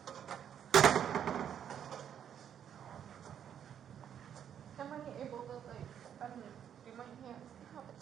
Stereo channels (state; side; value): quieter; left; 9.1 dB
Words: Am I able to like do my hands and have it